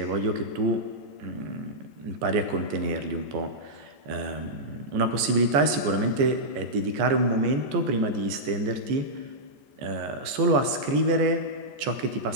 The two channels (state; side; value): late; left; 14 ms